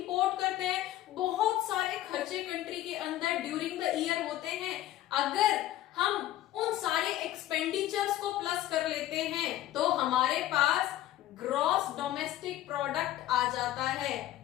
करते हैं, बहुत सारे खर्चे कंट्री के अंदर ड्यूरिंग द ईयर होते हैं। अगर हम उन सारे एक्सपेंडिचर्स को प्लस कर लेते हैं तो हमारे पास ग्रॉस डोमेस्टिक प्रोडक्ट आ जाता है,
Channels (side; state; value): right; quieter; 13.9 dB